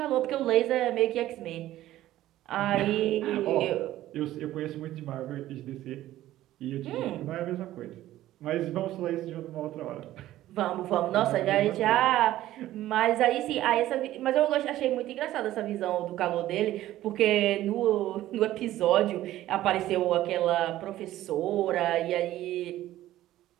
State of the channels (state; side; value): quieter; left; 14.3 dB